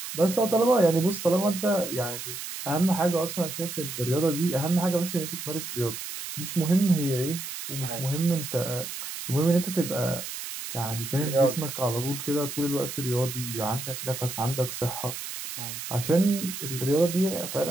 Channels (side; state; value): right; noise; hiss, 8 dB below the sound